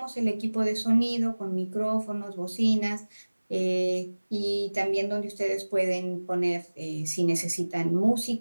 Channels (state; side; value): inverted; both; correlation -1.00